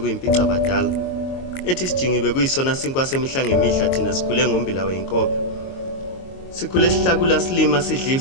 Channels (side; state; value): right; late; 22 ms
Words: badala. Ethi sijingibe kuyisona sinkwa semihla ngemihla thina sikhule ngombila weyinkobe. Sikhule sihlakula silima sidla